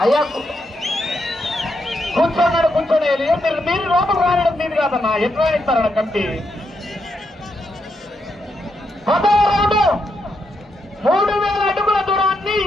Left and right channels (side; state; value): both; normal; correlation 0.81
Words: అయ్యా కూర్చోన్నాడు కూర్చోండి. మీరు లోపల రాయడం మీరు కాదన్నా, ఎట్లా ఇస్తారన్న కమిటీ. 10వ రౌండ్ 3000 అడుగుల దూరాన్ని